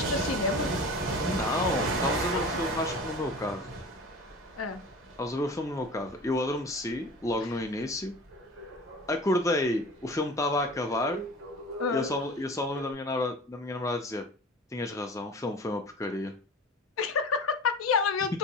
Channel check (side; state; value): both; normal; correlation 0.37